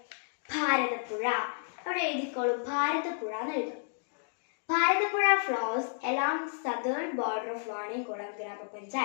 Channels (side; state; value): right; silent; digital silence